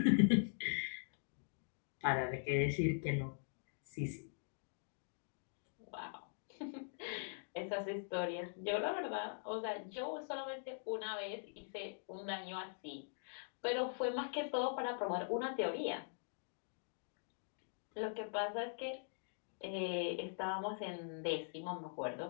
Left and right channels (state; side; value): silent; right; digital silence